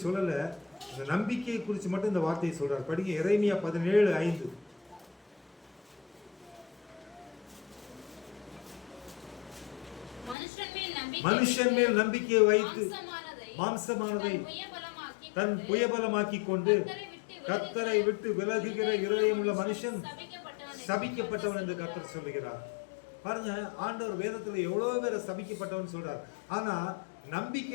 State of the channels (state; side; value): drops out; right; at 10.4 s